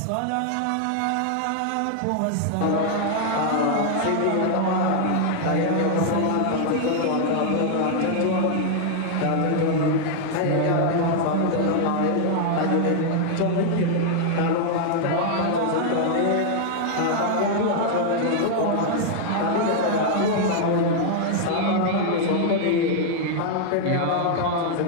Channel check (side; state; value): both; different; correlation 0.00